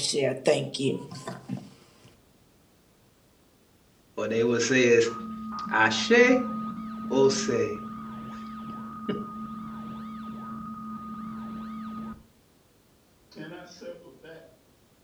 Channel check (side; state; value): both; identical; correlation 1.00